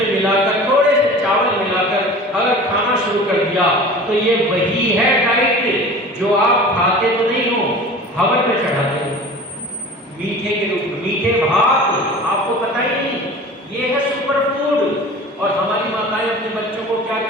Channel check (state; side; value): normal; both; correlation 0.39